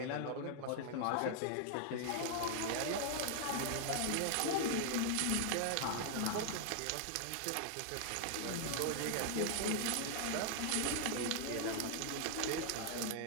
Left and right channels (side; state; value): both; different; correlation 0.00